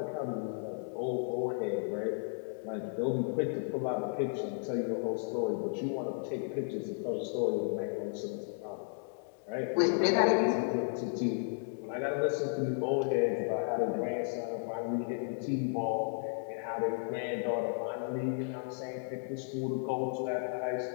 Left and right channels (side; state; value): right; silent; 55 dB below the other